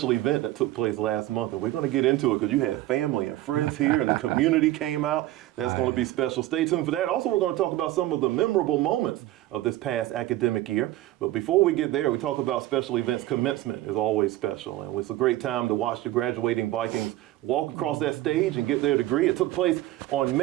event that took place last month, and we're going to get into it because you had family and friends here, and the community came out. That's going to be special. Stay tuned for that. Also, we're going to talk about some of the memorable moments of this past academic year. But before we get there, we talk about special events. Commencement is always special, and it's a great time to watch the graduating Vikings walk across that stage and get their degree. It took place on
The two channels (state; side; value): quieter; left; 15.7 dB